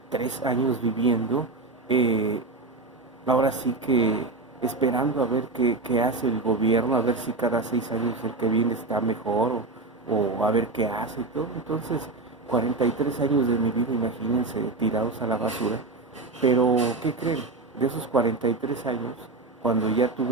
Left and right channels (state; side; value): quieter; left; 3.5 dB